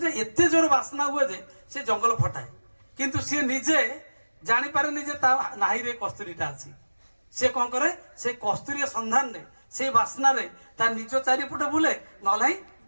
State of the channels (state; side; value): inverted; both; correlation -1.00